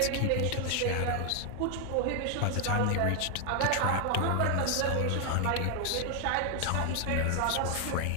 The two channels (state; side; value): different; both; correlation 0.00